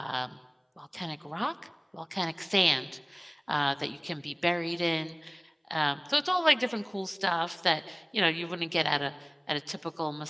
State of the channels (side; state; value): both; identical; correlation 1.00